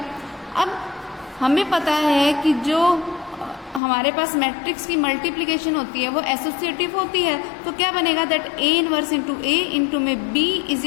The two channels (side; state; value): right; drops out; at 3.8 s